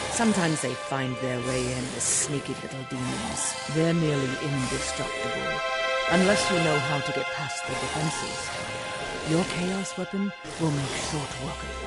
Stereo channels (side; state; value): both; identical; correlation 1.00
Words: Sometimes they find their way in as sneaky little demons. They're nearly indestructible, unless you know how to get past their defenses. Your chaos weapon will make short work of